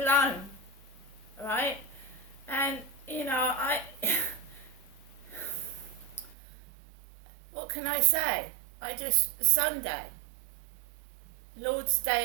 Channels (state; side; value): drops out; left; at 6.4 s